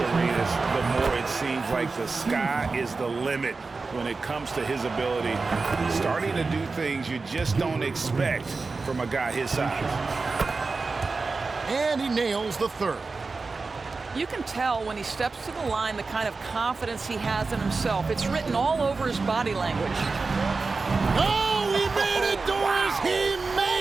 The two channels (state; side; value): quieter; left; 4.1 dB